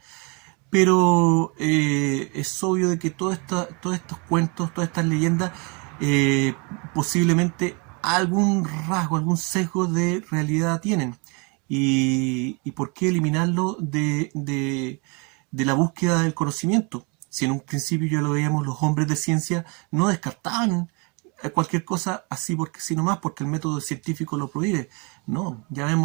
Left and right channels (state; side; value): quieter; left; 32.0 dB